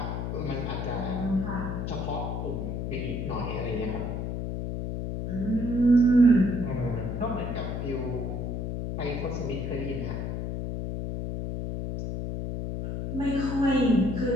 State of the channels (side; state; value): left; noise; hum, 3 dB below the sound